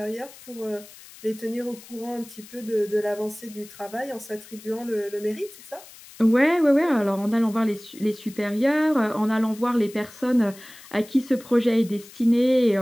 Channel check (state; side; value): noise; left; hiss, 20 dB below the sound